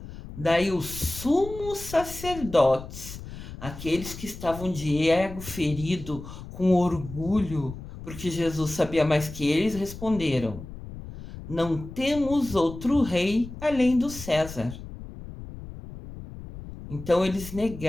Daí os sumos sacerdotes, aqueles que estavam de ego ferido, com orgulho, porque Jesus sabia mais que eles, responderam: Não temos outro rei além do César. Então eles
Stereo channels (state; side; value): noise; left; rumble, 12 dB below the sound